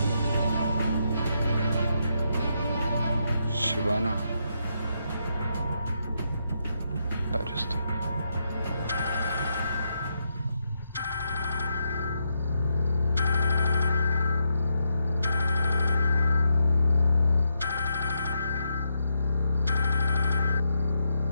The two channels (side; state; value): both; inverted; correlation -0.81